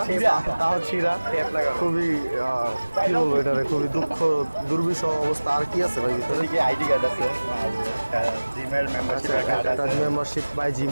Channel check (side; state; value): both; inverted; correlation -1.00